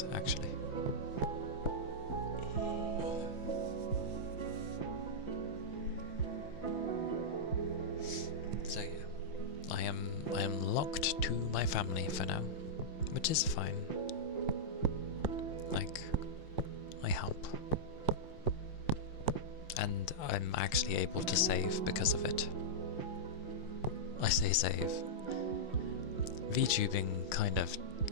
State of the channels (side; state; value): right; late; 5.8 ms